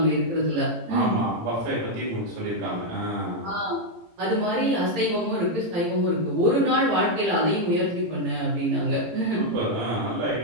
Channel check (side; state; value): left; late; 18 ms